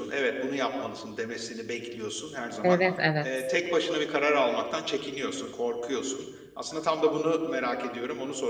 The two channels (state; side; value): identical; both; correlation 1.00